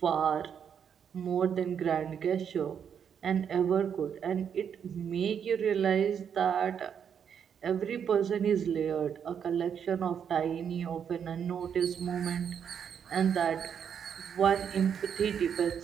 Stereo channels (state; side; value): quieter; left; 7.8 dB